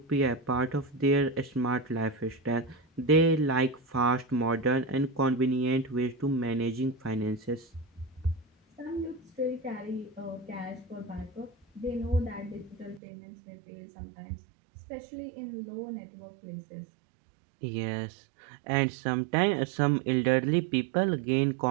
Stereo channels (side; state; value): left; drops out; at 13.0 s